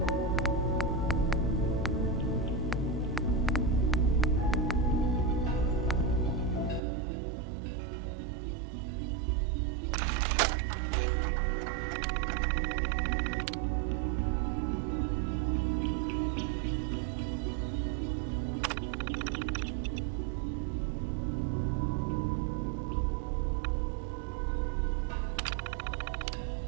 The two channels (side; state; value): left; drops out; at 6.8 s